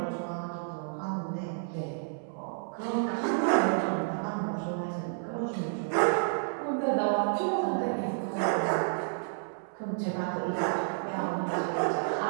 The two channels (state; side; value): silent; left; 57 dB below the other